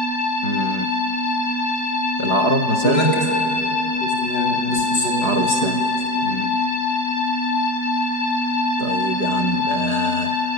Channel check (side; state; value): right; late; 4.9 ms